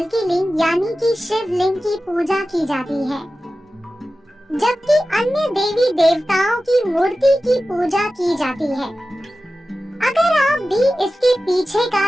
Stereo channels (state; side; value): normal; both; correlation 0.95